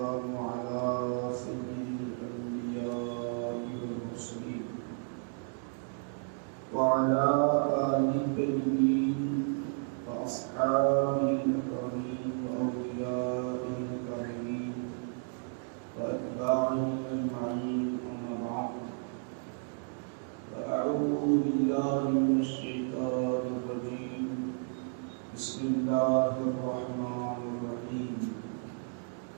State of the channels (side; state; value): left; silent; 56 dB below the other